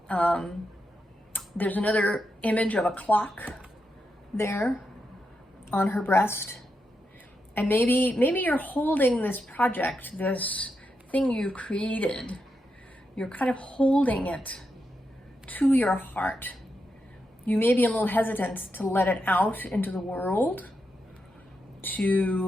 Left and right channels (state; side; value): normal; both; correlation 0.85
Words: There's another image of a clock there on her breast. And maybe you're holding this project, this thing you created. You're kind of holding it to your heart. You may be a little hesitant to let it out into the world,